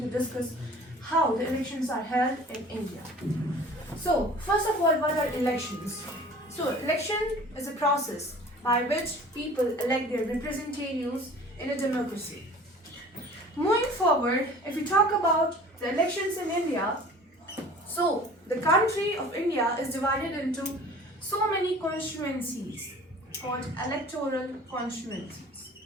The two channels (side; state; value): both; normal; correlation 0.46